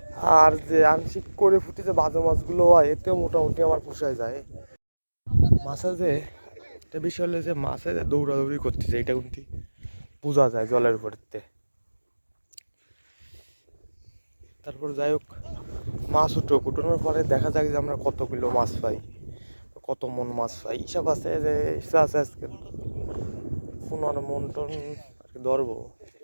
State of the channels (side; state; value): both; inverted; correlation -1.00